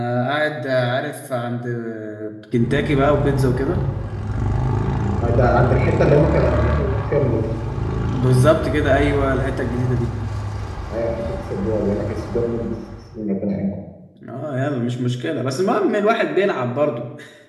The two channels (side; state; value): both; identical; correlation 1.00